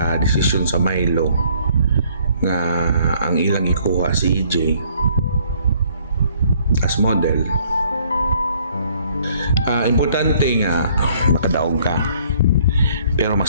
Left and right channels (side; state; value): both; inverted; correlation -0.62